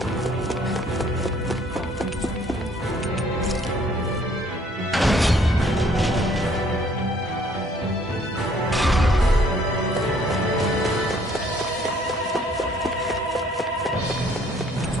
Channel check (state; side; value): normal; both; correlation 0.61